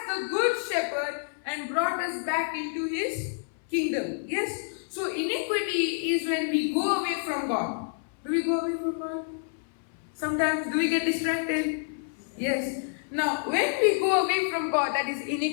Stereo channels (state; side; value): silent; right; 58 dB below the other